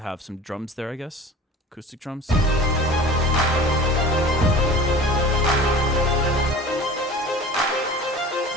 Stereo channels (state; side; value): normal; both; correlation 0.40